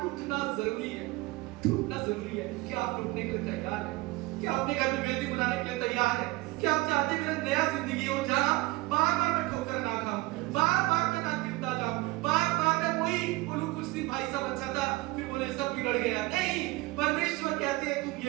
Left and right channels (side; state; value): left; quieter; 21.1 dB